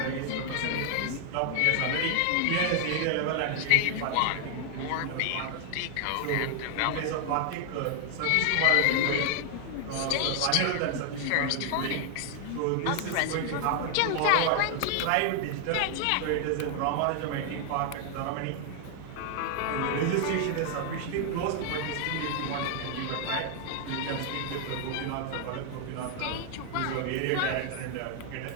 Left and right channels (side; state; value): both; different; correlation 0.00